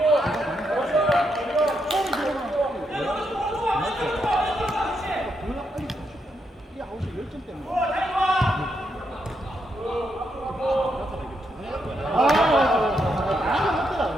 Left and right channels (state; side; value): normal; both; correlation 0.80